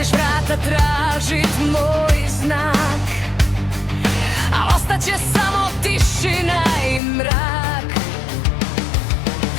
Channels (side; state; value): right; drops out; at 7.0 s